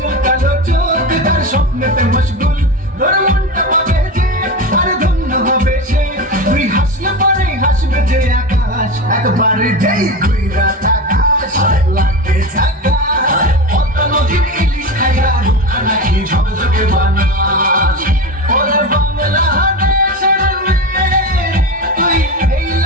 কালো চোখ তার স্বপ্নেতে মশগুল। তোর মনটা পাবে যে আর ধন্য হবে সে, তুই হাসলে পরে হাসবে যে আকাশ, একবার যেই ঘুইরা তাকাস লাগে ঝাকাস। পদ্মা নদীর ইলিশ খাইয়া রূপা নাকি ঝকঝকে বানাস। ওরে বাংলাদেশের মেয়ে তুই এই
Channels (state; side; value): normal; both; correlation 0.23